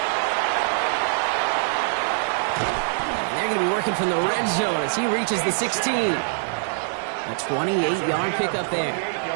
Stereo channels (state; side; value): silent; left; 59 dB below the other